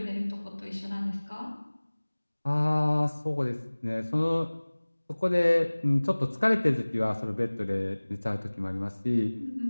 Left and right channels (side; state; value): both; inverted; correlation -1.00